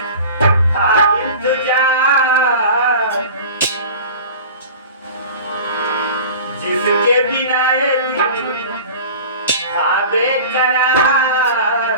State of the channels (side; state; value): both; inverted; correlation -0.38